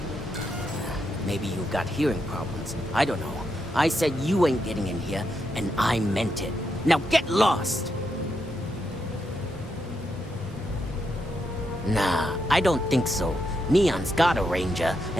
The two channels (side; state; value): both; normal; correlation 0.82